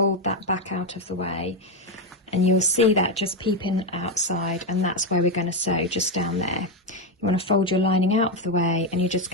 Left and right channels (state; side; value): normal; both; correlation 0.07